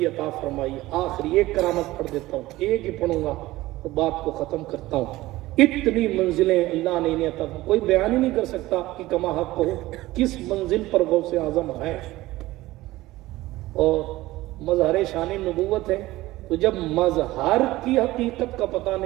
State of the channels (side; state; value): left; quieter; 17.7 dB